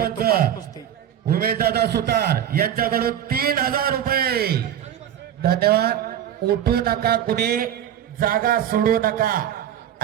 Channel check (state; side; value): quieter; left; 10.3 dB